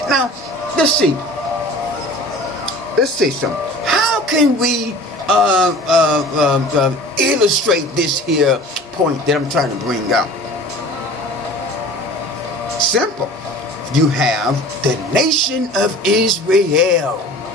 Now, let's see. Let's say something. How can we illustrate this here point that I'm trying to bring out? Simple. You have the nation of Israel.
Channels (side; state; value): both; normal; correlation 0.42